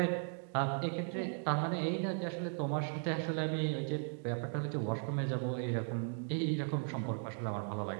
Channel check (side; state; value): left; silent; 53 dB below the other